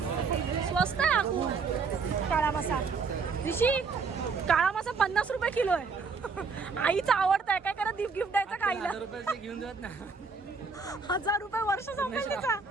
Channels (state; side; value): quieter; left; 4.8 dB